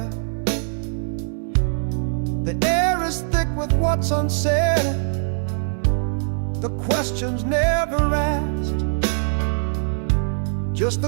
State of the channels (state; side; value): silent; left; digital silence